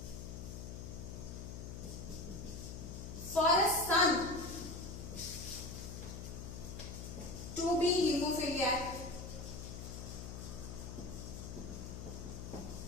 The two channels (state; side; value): noise; left; hum, 8 dB below the sound